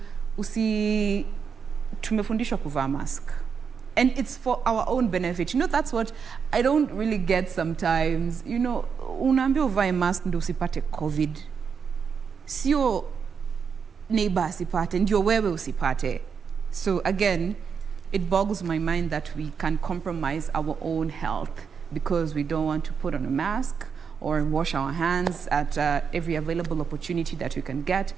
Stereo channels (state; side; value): quieter; left; 6.4 dB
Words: tumefundishwa kuvaa mask. And it's for our own benefit. You know, that's what I don't really get sometimes. You know, unaambiwa uvae mask ndio usipate COVID. Sio neighbor asipate, ndio wewe usipate. So again, it boggles my mind that we can compromise our own health because we don't want to put on a mask or wash our hands at every available opportunity that we can get,